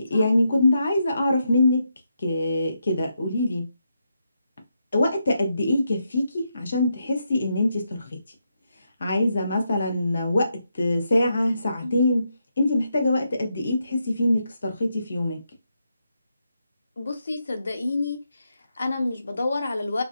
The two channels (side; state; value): both; inverted; correlation -0.82